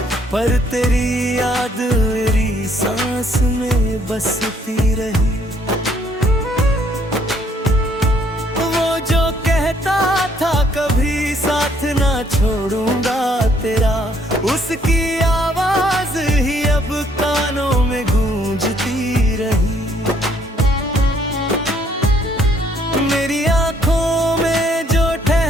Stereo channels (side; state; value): both; normal; correlation 0.66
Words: पर तेरी याद मेरी सांस में बसती रही। वो जो कहता था कभी साथ ना छोड़ूंगा तेरा, उसकी आवाज ही अब कानों में गूंजती रही। मेरी आंखों में जो